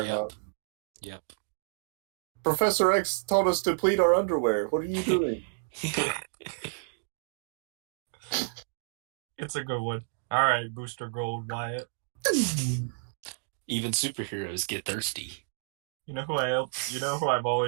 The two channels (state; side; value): silent; left; digital silence